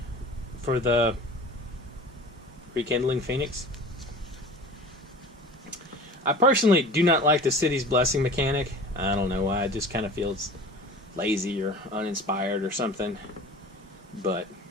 for the Rekindling Phoenix. I personally do not like the City's Blessing mechanic. I don't know why. It just kind of feels lazy or uninspired or something. But,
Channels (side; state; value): both; normal; correlation 0.40